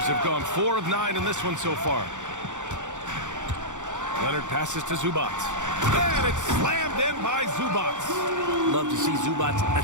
have gone 4 of 9 in this one so far. Leonard passes to Zubac. And it's slammed in by Zubac. Love to see Zubac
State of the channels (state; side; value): late; left; 0.85 ms